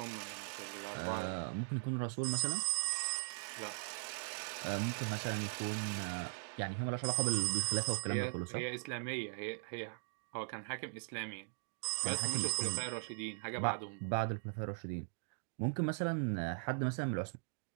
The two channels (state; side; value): silent; left; digital silence